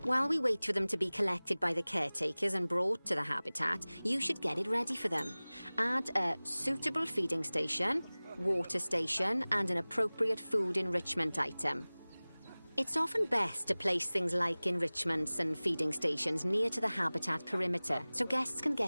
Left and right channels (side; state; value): both; inverted; correlation -0.99